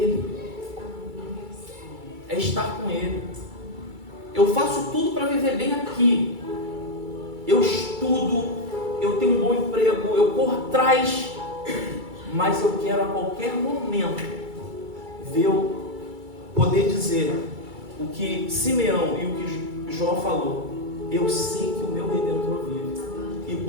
É estar com ele. Eu faço tudo para viver bem aqui. Eu estudo, eu tenho um bom emprego, eu corro atrás, mas eu quero a qualquer momento poder dizer o que Simeão e o que Jó falou: eu sei que o meu Redentor vive e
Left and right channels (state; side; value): late; left; 2.3 ms